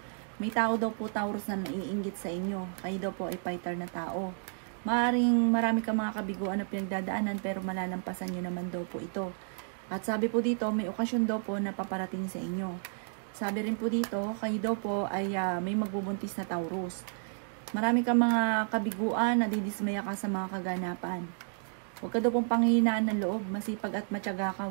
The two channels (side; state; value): left; silent; 57 dB below the other